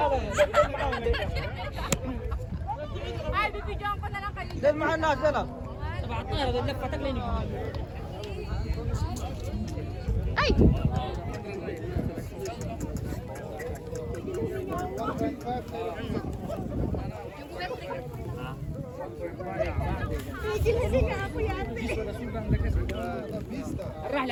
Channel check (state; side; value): identical; both; correlation 1.00